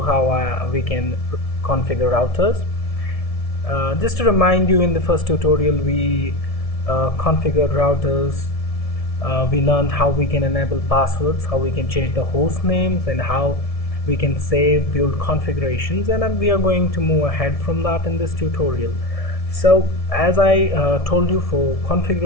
how we can configure routers. Just to remind you, in the first tutorial we configured routers. We learned how we can enable passwords, how we can change the host names, and how we can save build configurations, and we are going to move ahead from that in this tutorial. So as I told you, for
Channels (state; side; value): late; right; 1.7 ms